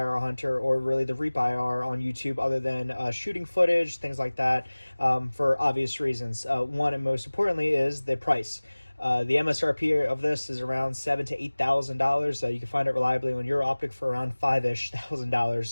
or really the Reap IR on YouTube other than shooting footage, things like that, for obvious reasons. One and most importantly is the price. The MSRP of this is around $7,000 to $8,000. You can find it reliably on your Optic for around $5,000-ish.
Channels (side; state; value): both; inverted; correlation -1.00